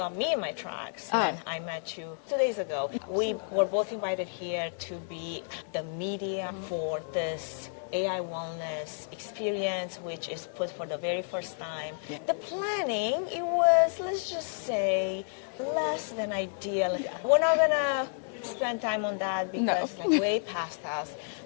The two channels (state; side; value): silent; right; digital silence